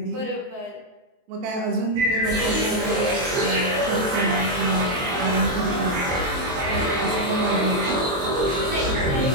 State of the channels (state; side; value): late; left; 23 ms